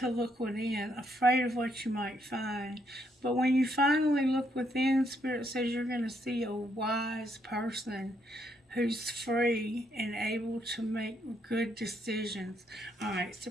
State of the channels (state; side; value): normal; both; correlation 0.74